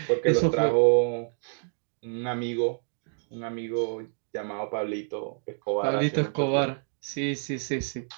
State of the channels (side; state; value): left; silent; digital silence